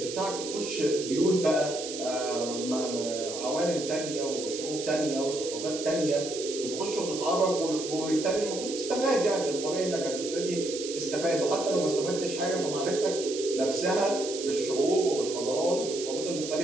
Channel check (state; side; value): noise; right; hiss, 8 dB below the sound